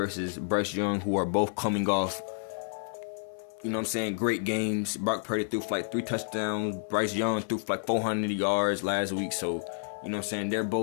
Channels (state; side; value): silent; right; 56 dB below the other